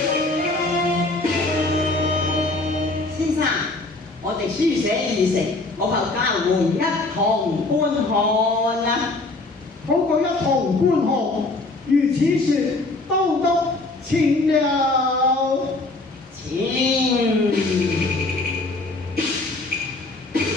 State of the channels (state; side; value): quieter; right; 3.1 dB